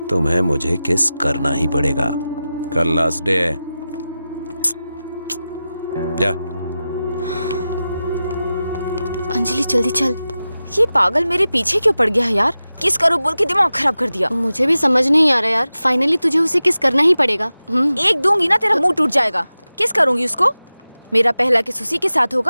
तुम्हें मुझे किस करना ही पड़ेगा। कल लास्ट डे है। जा। अंजलि जल्दी चल। ये पागल मेरे पीछे क्यों पड़ गया है यार? किस करो बोल के दिमाग खराब कर दिया। मुझे भी समझ नहीं आ रहा यार, फाइनली तुझे उसे किस करना ही पड़ेगा। एक दूंगी ना तेरा मुंह टूट जाएगा। किस करूंगी उसको? मेरा पहला किस उसी के साथ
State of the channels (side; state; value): both; inverted; correlation -0.94